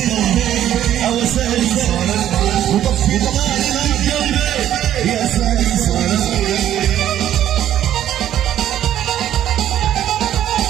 او سالي وطفي النار من قلبي يا سالي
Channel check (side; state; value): left; quieter; 11.5 dB